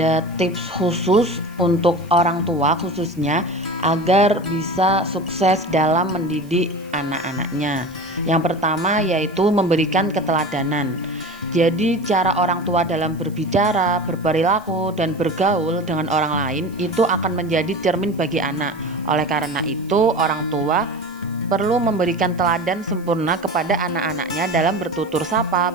tips khusus untuk orang tua khususnya agar bisa sukses dalam mendidik anak-anaknya. Yang pertama yaitu memberikan keteladanan. Jadi cara orang tua dalam berbicara, berperilaku, dan bergaul dengan orang lain itu akan menjadi cermin bagi anak. Oleh karena itu, orang tua perlu memberikan teladan sempurna kepada anak-anaknya dalam bertutur sapa,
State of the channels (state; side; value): noise; right; hiss, 27 dB below the sound